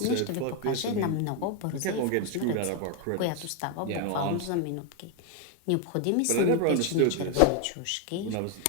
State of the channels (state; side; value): different; both; correlation 0.01